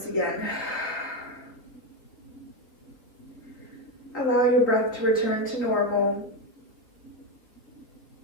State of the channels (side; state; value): right; late; 3.6 ms